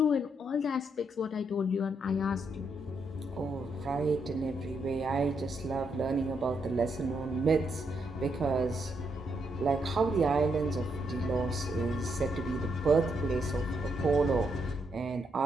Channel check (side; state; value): both; normal; correlation 0.78